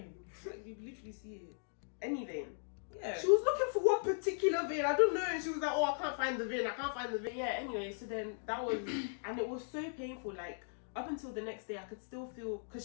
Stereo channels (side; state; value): right; silent; digital silence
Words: Like, you literally see it. Any vein? Yeah. She was looking for one particular vein. I don't know. And she was like, oh, I can't find the vein. I can't find the vein. Yeah, anyway, so then that was, and it was so painful. Like, up until the next day, I could still feel,